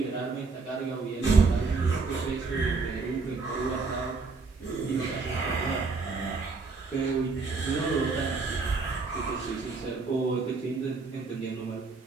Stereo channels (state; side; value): quieter; left; 4.2 dB